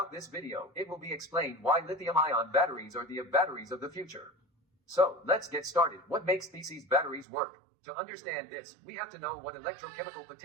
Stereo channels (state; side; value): drops out; left; at 7.2 s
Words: this video, it will be explained why lithium-ion batteries are the batteries of the future. So, let's get started. What makes these batteries work? To understand this, we have to know what electrochemical